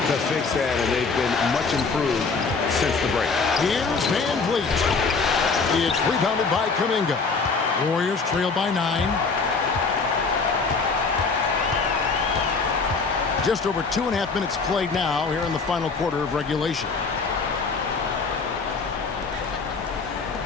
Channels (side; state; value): right; quieter; 4.6 dB